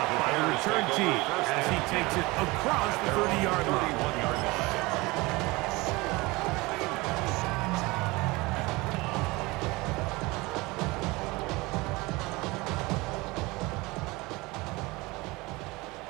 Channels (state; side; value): quieter; left; 22.8 dB